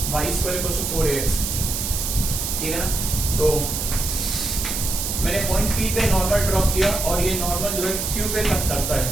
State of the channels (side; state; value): right; noise; hiss, 2 dB below the sound